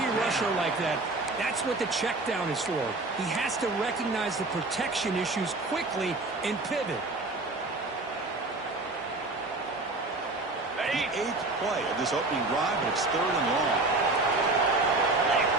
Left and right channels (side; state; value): left; quieter; 3.1 dB